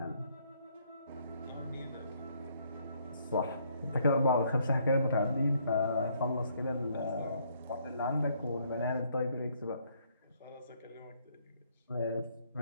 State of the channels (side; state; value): both; inverted; correlation -0.68